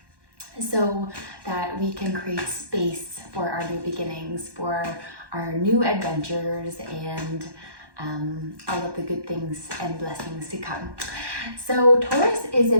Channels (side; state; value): left; late; 1.1 ms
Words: so that we can create space for our new beginnings, for our new adventures, and all of the good things and blessings to come. So Taurus is a